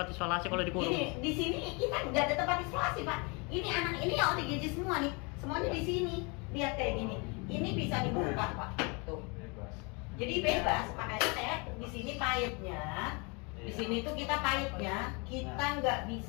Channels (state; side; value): quieter; right; 31.0 dB